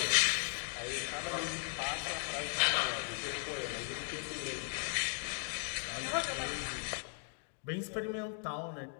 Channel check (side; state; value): right; silent; 53 dB below the other